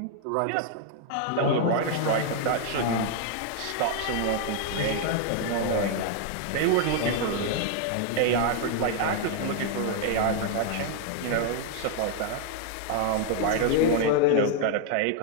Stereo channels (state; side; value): different; both; correlation 0.00